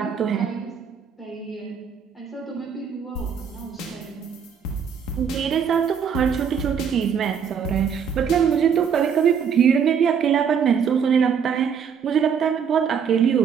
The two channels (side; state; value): left; quieter; 7.1 dB